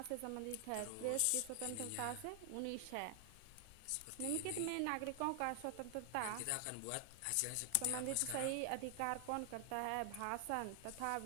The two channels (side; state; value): both; different; correlation 0.00